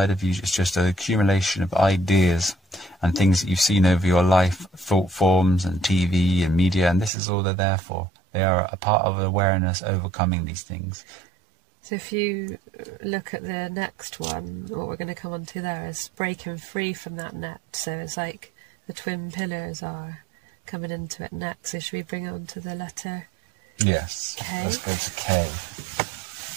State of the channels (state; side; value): drops out; left; at 7.1 s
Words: of you is just an accumulation of ideas and things that you've seen over your life, thought forms and TV and media, and this is all they're there for. They are a part of awareness overcoming these things. So if you look at the next one, what we're going to come on to there is breaking free from that net. So it's like the twin pillars are coming into it next. So should we bring it on to the letter? Yes, K? Let's go to K.